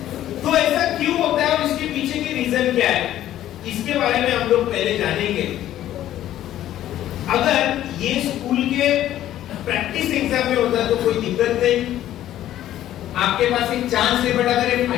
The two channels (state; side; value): quieter; right; 12.7 dB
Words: तो ऐसा क्यों होता है और इसके पीछे की रीजन क्या है, इसके बारे में हम लोग पहले जानेंगे। अगर ये स्कूल के प्रैक्टिस एग्जाम में होता है तो कोई दिक्कत नहीं, आपके पास एक चांस है, बट अगर ये